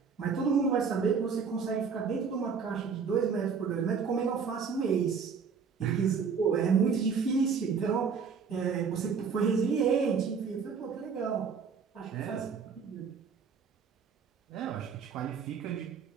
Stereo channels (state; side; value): quieter; left; 6.0 dB